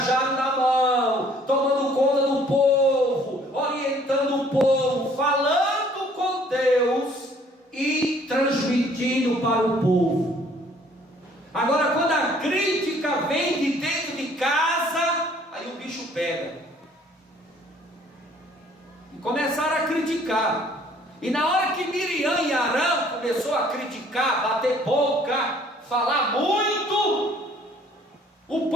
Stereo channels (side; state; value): both; normal; correlation 0.58